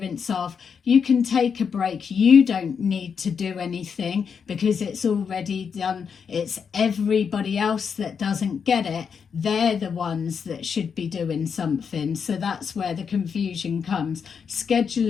of you can take a break, you don't need to do anything because it's already done. It's everybody else that doesn't get it, they're the ones that should be doing something. So that's where the confusion comes. Schedule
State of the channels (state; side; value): quieter; right; 6.5 dB